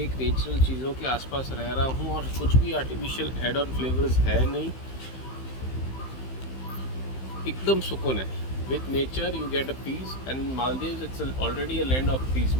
एक नेचुरल चीज़ों के आसपास रह रहा हूँ और कुछ भी आर्टिफिशियल एड ऑन फ्लेवर्स है नहीं, एकदम सुकून है। With nature you get a peace, and Maldives it's already a land of peace.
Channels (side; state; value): right; late; 15 ms